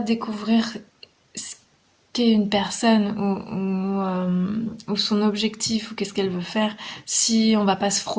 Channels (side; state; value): both; identical; correlation 1.00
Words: ce qu'est une personne ou son objectif ou qu'est-ce qu'elle veut faire si on va pas se